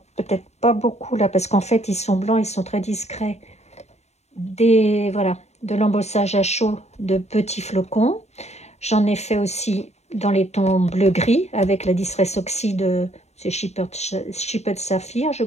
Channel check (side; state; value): right; late; 0.32 ms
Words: peut-être pas beaucoup là, parce qu'en fait, ils sont blancs, ils sont très discrets. Voilà, de l'embossage à chaud de petits flocons. J'en ai fait aussi dans les tons bleu-gris avec la Distress Oxy de Shepherd Saphir, je